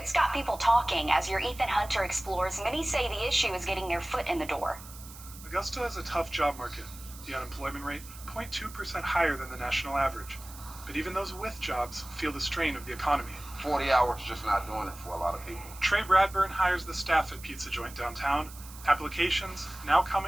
got people talking. As your Ethan Hunter explores, many say the issue is getting their foot in the door. Augusta has a tough job market. The unemployment rate, 0.2% higher than the national average. But even those with jobs feel the strain of the economy. 40 hours just not doing it for a lot of people. Trey Bradburn hires the staff at Pizza Joint downtown. Applications now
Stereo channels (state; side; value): noise; right; hiss, 17 dB below the sound